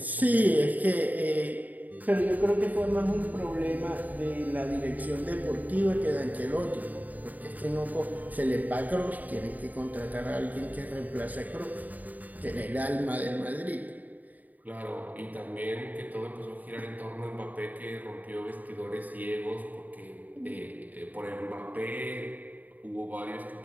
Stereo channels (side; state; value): left; late; 0.080 ms